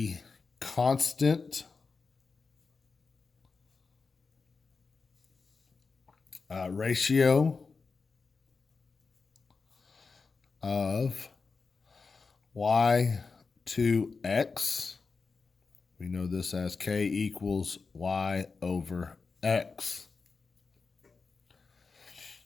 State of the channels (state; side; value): quieter; right; 4.6 dB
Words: constant ratio of y to x. We know this as k equals y over x.